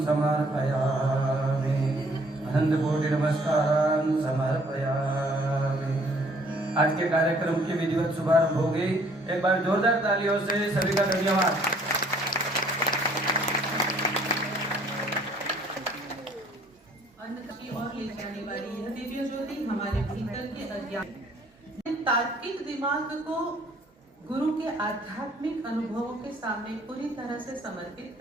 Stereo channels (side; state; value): both; normal; correlation 0.60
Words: समर्पयामि, अनंतकोटि नमस्कारान् समर्पयामि। आज के कार्यक्रम की विधिवत शुभारंभ हो गई। एक बार जोरदार तालियों से सभी का धन्यवाद। अन्न की ओर ले जाने वाली यह दिव्य ज्योति हमारे भीतर के अज्ञान तार्किक दिमाग को गुरु के आध्यात्मिक अनुभवों के सामने पूरी तरह से समर्पित